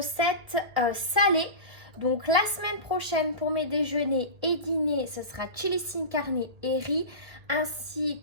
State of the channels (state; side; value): late; left; 1.8 ms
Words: salées. Donc la semaine prochaine pour mes déjeuners et dîners, ce sera chili sin carne et riz,